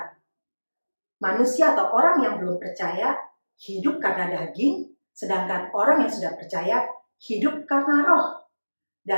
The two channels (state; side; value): inverted; both; correlation -1.00